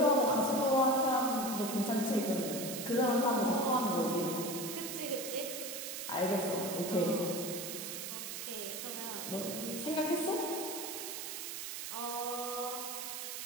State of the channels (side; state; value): right; noise; hiss, 6 dB below the sound